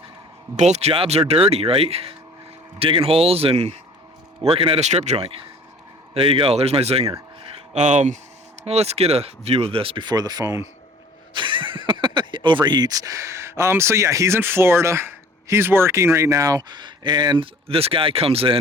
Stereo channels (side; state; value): both; normal; correlation 0.49